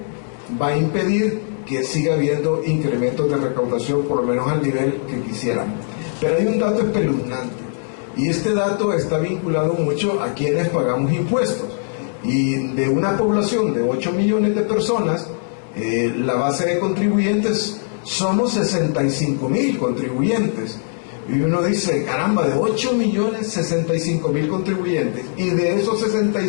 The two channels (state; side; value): silent; right; 64 dB below the other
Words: va a impedir que siga habiendo incrementos de recaudación, por lo menos al nivel que quisiéramos. Pero hay un dato espeluznante, y este dato está vinculado mucho a quienes pagamos impuestos. Y de una población de 8 millones de personas, la base de contribuyentes somos 65,000 contribuyentes, Y uno dice, caramba, de 8.065.000 contribuyentes, y de esos